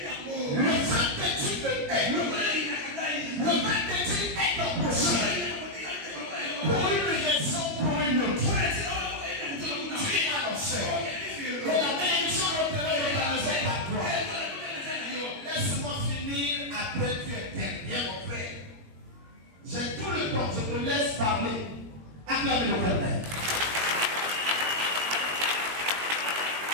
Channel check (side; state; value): left; late; 20 ms